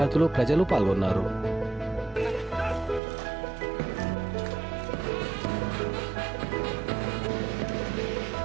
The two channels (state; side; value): drops out; left; at 3.0 s